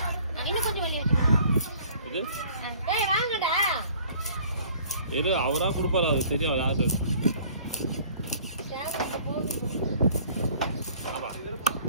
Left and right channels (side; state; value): both; inverted; correlation -0.53